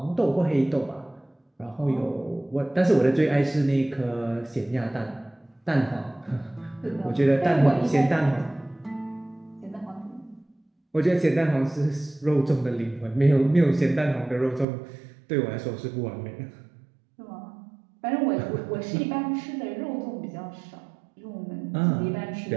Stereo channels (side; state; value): left; drops out; at 14.7 s